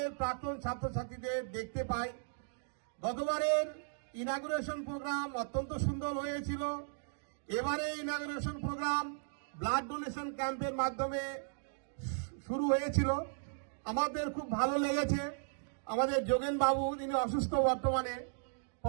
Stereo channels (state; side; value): silent; left; digital silence